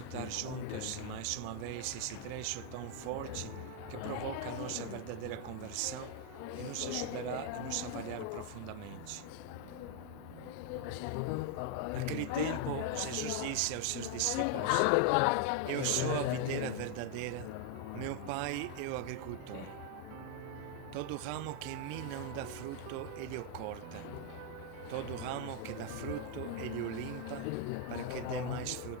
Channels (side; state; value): both; different; correlation 0.00